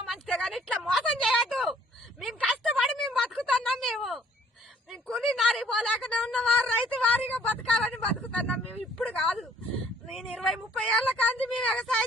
మంచిదే కానీ ఇట్లా మోసం చేయొద్దు. మేము కష్టపడి మేము బతుకుతున్నాం. మేము కూలి నారి పోలేకనే ఉన్నవారు రైతు వారిగా బతకాలని బతుకుతున్నాం. మేము ఇప్పుడు కాదు, నేను 20-30 ఏళ్ల కాంతి మేము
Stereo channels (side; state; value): both; normal; correlation 0.60